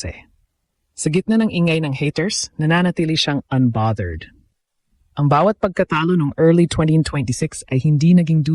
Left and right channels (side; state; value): both; identical; correlation 1.00